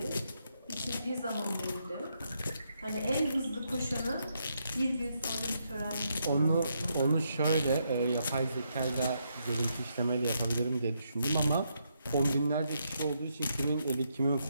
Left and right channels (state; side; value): inverted; both; correlation -0.78